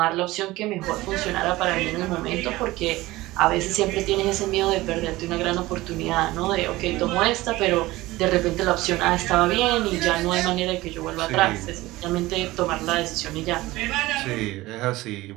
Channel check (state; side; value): quieter; left; 18.7 dB